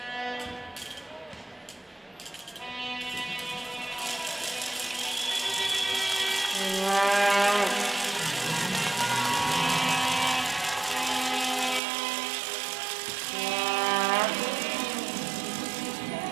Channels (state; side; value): drops out; left; at 11.8 s